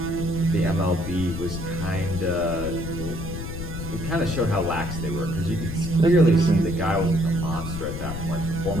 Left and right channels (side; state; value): left; noise; rumble, 6 dB below the sound